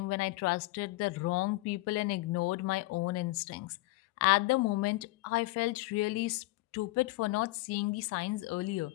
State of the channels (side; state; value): right; quieter; 20.6 dB